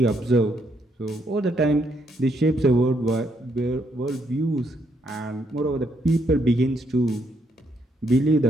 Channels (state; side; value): normal; both; correlation 0.75